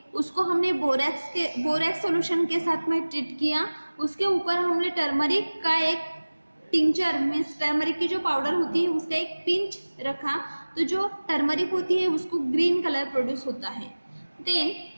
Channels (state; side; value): inverted; both; correlation -1.00